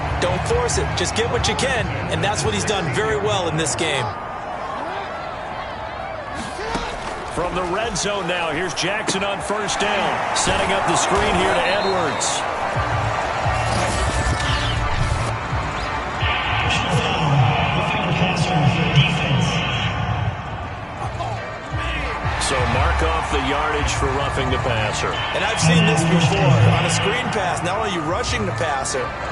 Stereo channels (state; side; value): identical; both; correlation 1.00